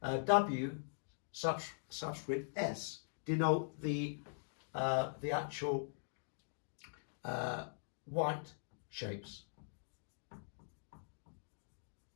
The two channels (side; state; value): right; silent; digital silence